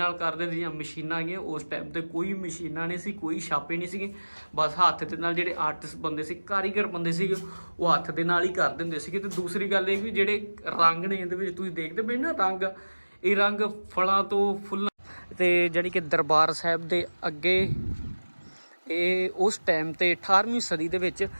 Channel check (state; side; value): inverted; both; correlation -1.00